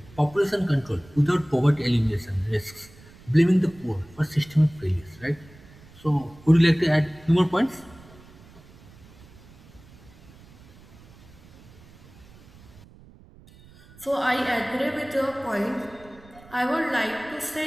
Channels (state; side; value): noise; right; rumble, 23 dB below the sound